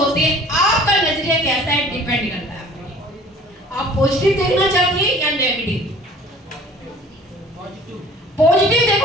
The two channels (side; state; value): both; normal; correlation 0.49